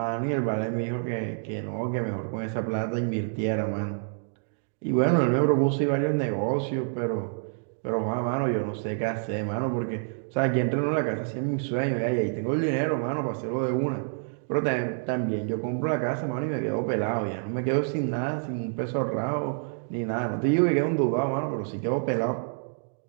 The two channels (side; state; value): left; silent; digital silence